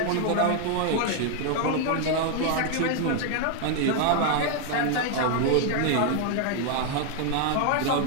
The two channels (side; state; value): both; different; correlation 0.00